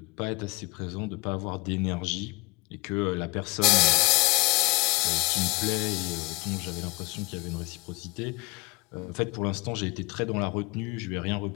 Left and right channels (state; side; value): quieter; right; 25.4 dB